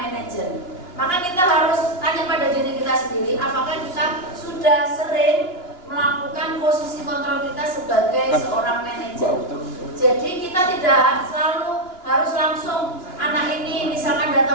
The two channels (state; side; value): late; right; 2.8 ms